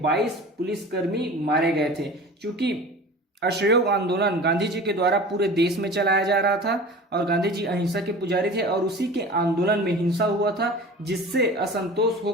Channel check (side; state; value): both; normal; correlation 0.38